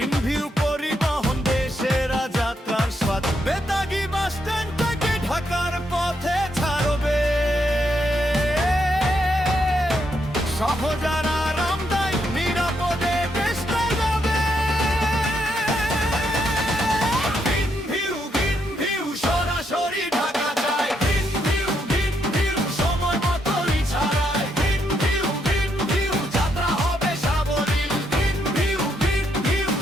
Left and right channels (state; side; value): normal; both; correlation 0.78